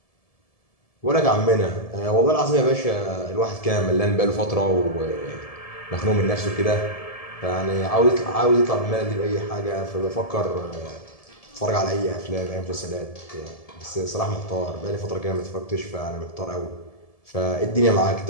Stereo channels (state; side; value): late; right; 1.7 ms